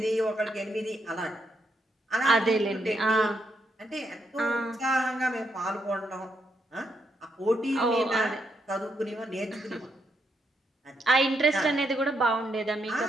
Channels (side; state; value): both; normal; correlation 0.79